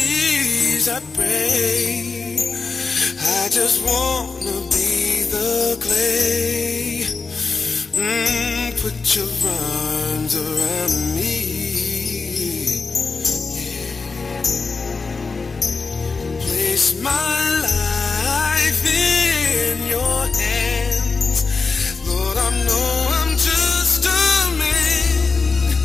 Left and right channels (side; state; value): right; quieter; 4.4 dB